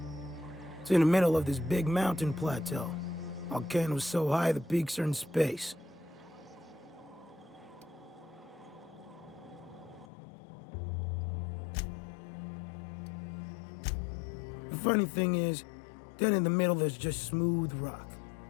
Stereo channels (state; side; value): drops out; right; at 10.1 s